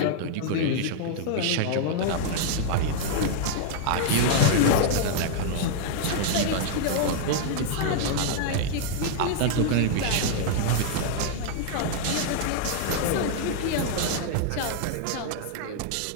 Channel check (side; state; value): both; different; correlation -0.01